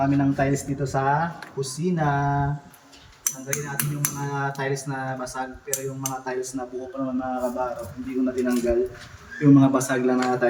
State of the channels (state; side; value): identical; both; correlation 1.00